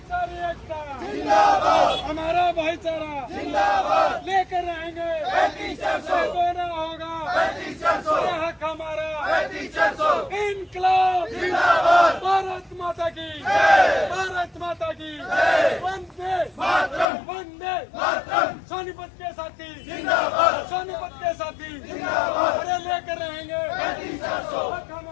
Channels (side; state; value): right; drops out; at 17.1 s